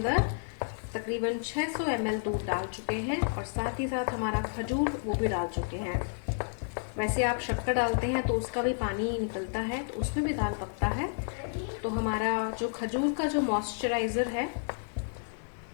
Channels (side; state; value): right; silent; digital silence